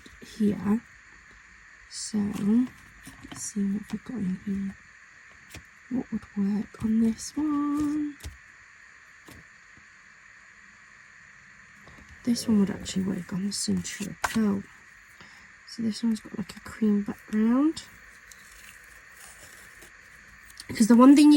here. So let's see what we've got in here. What would work on this one? This one would actually work on the Centura Pearl. So this one's got like a cream background. Because the one thing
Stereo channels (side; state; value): both; identical; correlation 1.00